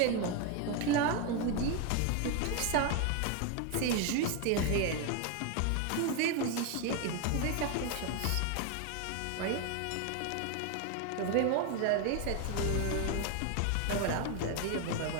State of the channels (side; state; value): both; different; correlation 0.01